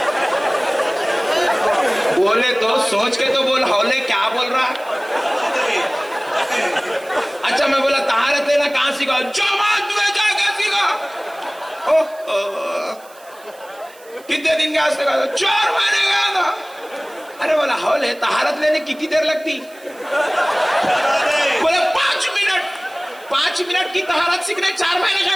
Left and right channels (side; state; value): right; noise; hiss, 25 dB below the sound